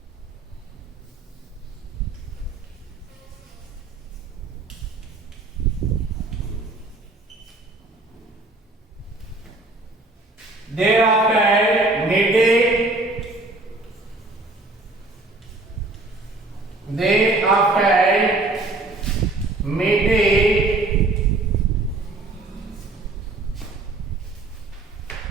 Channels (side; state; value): left; quieter; 3.1 dB